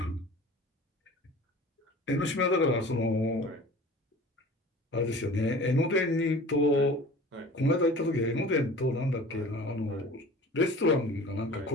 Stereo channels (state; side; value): normal; both; correlation 0.42